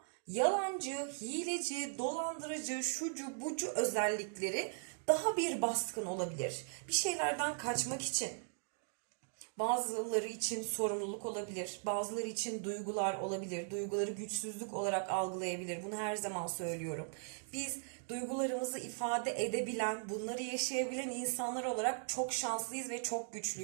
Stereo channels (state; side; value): silent; left; digital silence